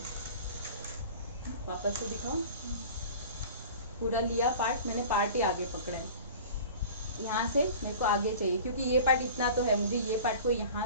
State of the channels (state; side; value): inverted; both; correlation -0.40